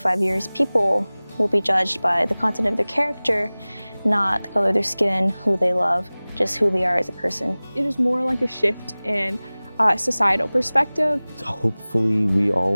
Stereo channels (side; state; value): both; inverted; correlation -0.99